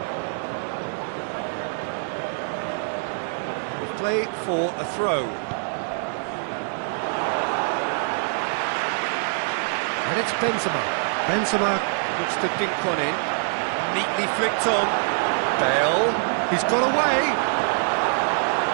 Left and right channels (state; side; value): silent; left; 62 dB below the other